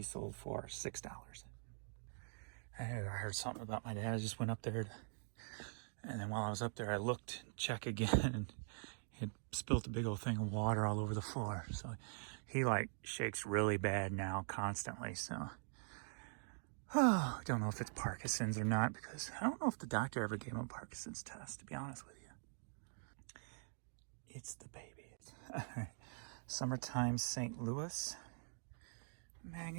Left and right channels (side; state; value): left; silent; digital silence